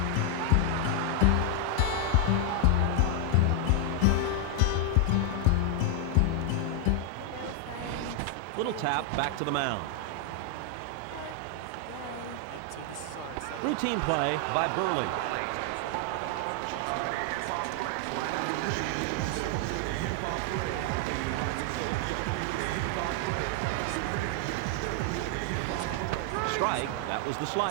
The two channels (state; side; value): different; both; correlation 0.00